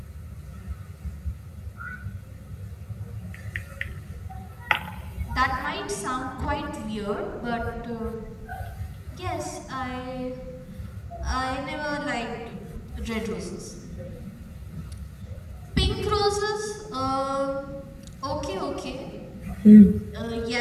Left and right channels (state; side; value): identical; both; correlation 1.00